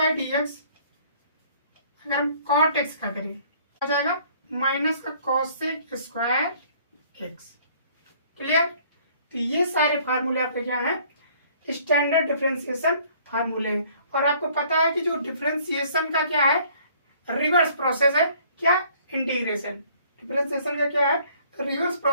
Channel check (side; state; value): both; inverted; correlation -0.58